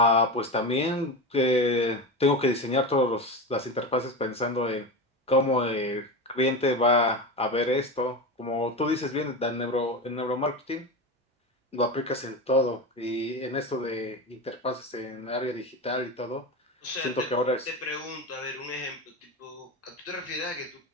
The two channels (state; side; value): normal; both; correlation 0.22